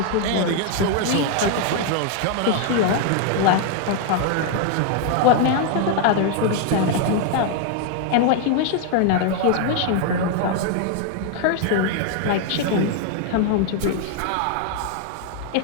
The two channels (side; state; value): both; different; correlation 0.00